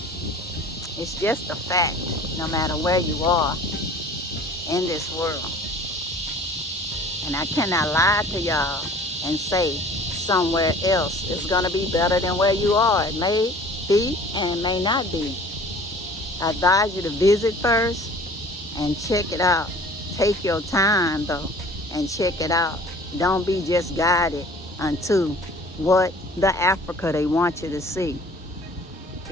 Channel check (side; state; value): both; normal; correlation 0.47